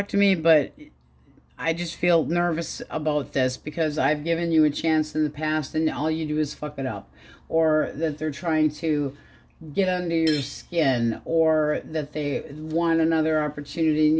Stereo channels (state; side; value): identical; both; correlation 1.00